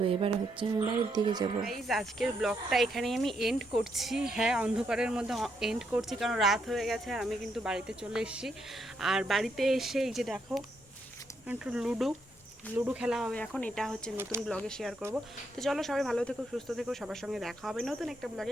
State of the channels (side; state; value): both; normal; correlation 0.77